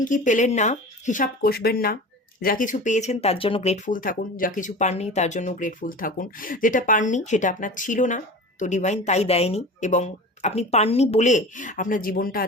কি পেলেন না হিসাব কষবেন না, যা কিছু পেয়েছেন তার জন্য গ্রেটফুল থাকুন, যা কিছু পাননি তার জন্য গ্রেটফুল থাকুন। যেটা পাননি সেটা আপনার ছিল না, তো ডিভাইন তাই দেয়নি, এবং আপনি পাননি বলে আপনার জীবনটা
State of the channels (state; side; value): normal; both; correlation 0.35